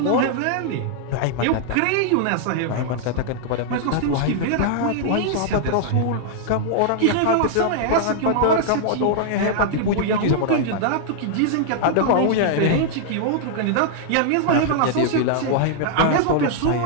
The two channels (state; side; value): different; both; correlation -0.01